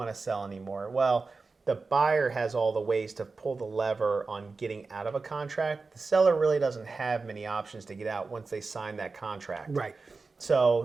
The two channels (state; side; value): quieter; left; 4.1 dB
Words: to sell anymore. Well, the buyer has all the ways to pull the lever on getting out of a contract. The seller really doesn't have many options to get out once they sign that contract. Right.